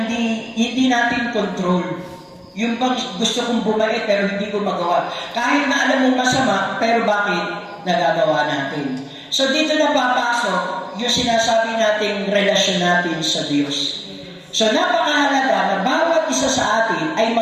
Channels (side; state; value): both; identical; correlation 1.00